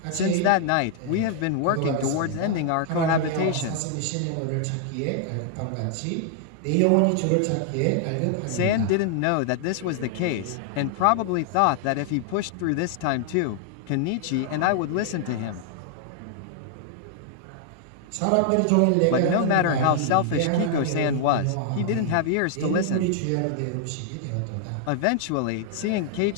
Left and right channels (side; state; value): both; different; correlation -0.01